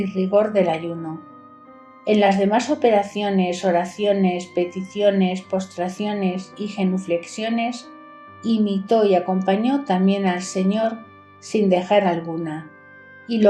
rigor del ayuno. En las demás operaciones, oraciones, peticiones, postraciones y genuflexiones, imitó y acompañó también al Señor sin dejar alguna, y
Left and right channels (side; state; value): both; identical; correlation 1.00